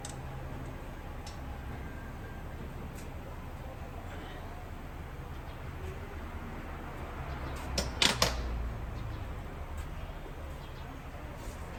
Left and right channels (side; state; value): both; identical; correlation 1.00